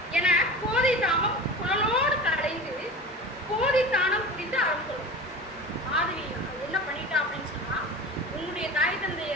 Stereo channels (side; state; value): both; normal; correlation 0.33